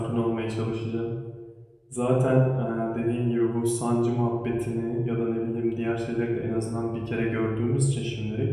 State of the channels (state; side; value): identical; both; correlation 1.00